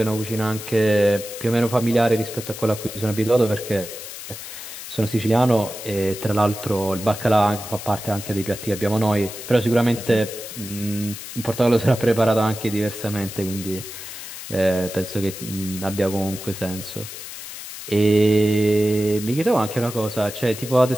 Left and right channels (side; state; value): left; noise; hiss, 11 dB below the sound